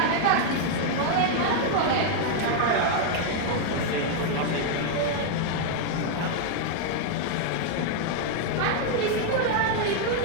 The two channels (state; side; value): different; both; correlation 0.00